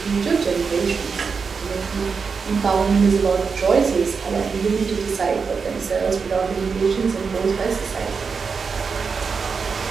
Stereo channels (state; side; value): quieter; left; 5.4 dB